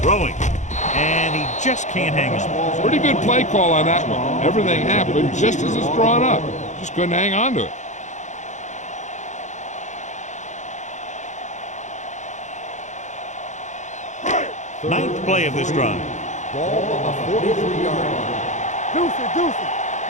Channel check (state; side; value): late; right; 0.35 ms